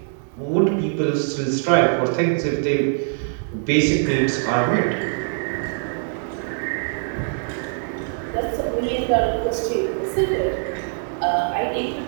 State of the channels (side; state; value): left; silent; digital silence